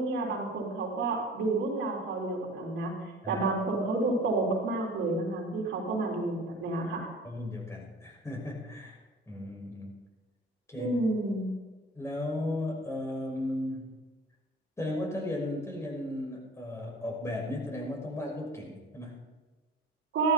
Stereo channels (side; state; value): both; normal; correlation 0.43